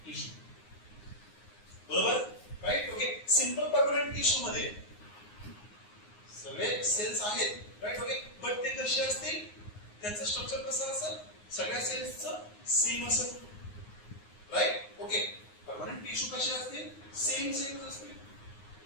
टिश्यू बरोबर right okay simple permanent tissue मध्ये सगळे सेल्स आहेत राइट ओके बट ते कसे असतील त्यांचं स्ट्रक्चर कसं असेल ओके परमनंट टिश्यू कसे असतील सेम असतील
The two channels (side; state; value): right; late; 9.6 ms